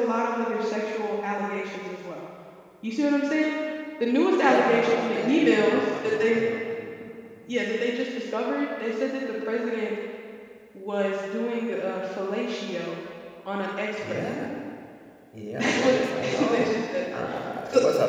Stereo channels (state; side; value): identical; both; correlation 1.00